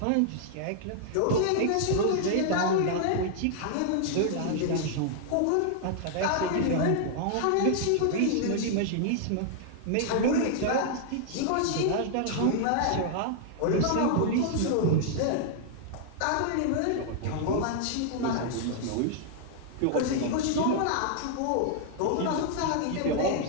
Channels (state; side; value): different; both; correlation -0.01